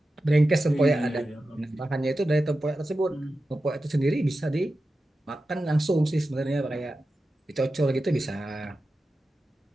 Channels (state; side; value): normal; both; correlation 0.92